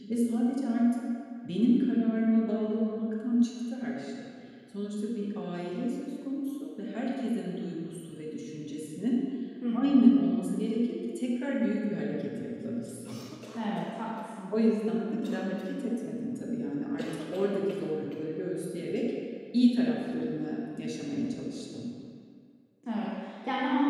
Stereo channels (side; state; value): both; identical; correlation 1.00